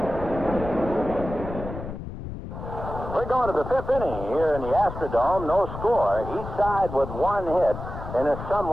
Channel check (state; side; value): noise; left; rumble, 9 dB below the sound